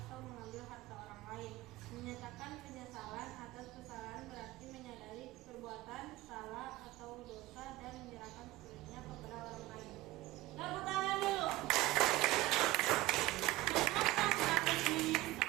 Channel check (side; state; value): left; quieter; 18.1 dB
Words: atau mengambil harta orang lain. Menyatakan penyesalan atas kesalahan berarti menyadari perbuatan salah atau dosa dan menyerahkan sepenuhnya kepada orang lain. Tepuk tangan dulu. Mengatakan